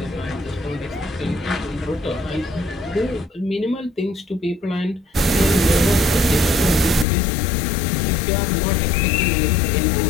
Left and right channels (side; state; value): right; drops out; at 7.1 s